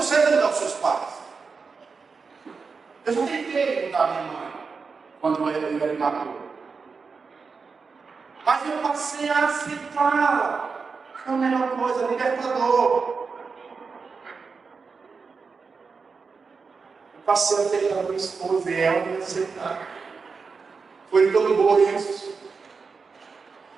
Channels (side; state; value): left; quieter; 4.9 dB